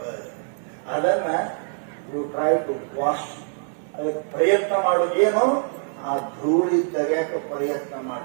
ಅದನ್ನ ಯು ಟ್ರೈ ಟು ವಾಶ್. ಅದಕ್ಕೆ ಪ್ರಯತ್ನ ಮಾಡು. ಏನು ಆ ಧೂಳಿ ತೆಗ್ಯಾಕ ಪ್ರಯತ್ನ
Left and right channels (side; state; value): left; silent; digital silence